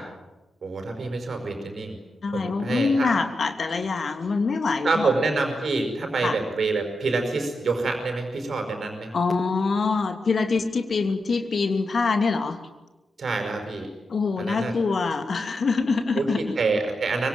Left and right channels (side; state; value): both; normal; correlation 0.86